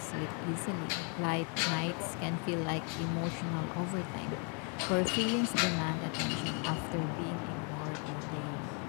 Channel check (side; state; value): right; quieter; 37.5 dB